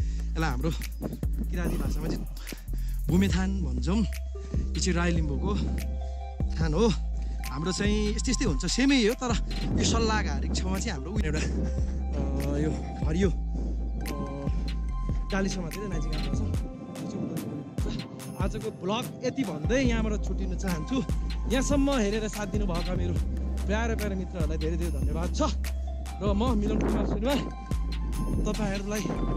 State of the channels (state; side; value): identical; both; correlation 1.00